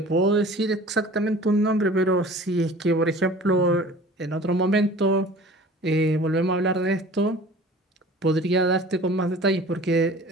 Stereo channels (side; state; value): both; normal; correlation 0.45